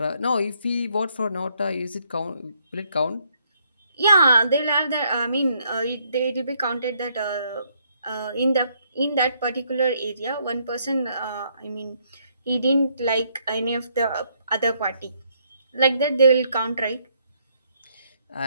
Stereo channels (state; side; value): inverted; both; correlation -0.71